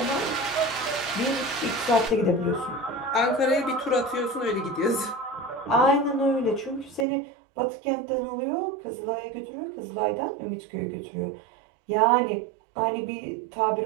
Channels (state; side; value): drops out; left; at 7.1 s